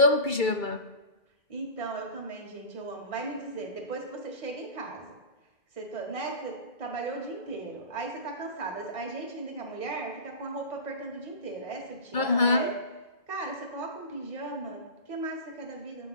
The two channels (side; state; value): right; late; 2.3 ms